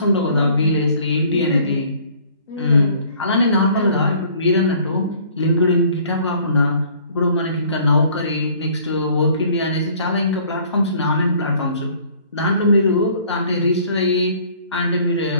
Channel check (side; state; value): both; inverted; correlation -0.55